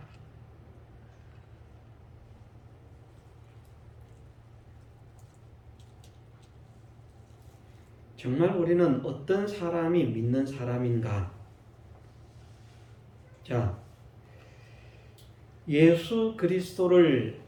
정말 우리는 어떤 사람이 믿는 사람인가? 자, 예수 그리스도를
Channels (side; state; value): both; identical; correlation 1.00